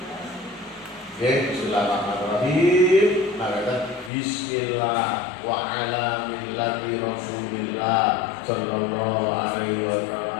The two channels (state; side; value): drops out; right; at 4.1 s